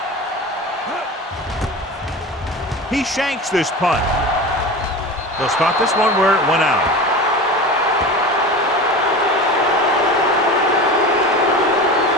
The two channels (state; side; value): normal; both; correlation 0.31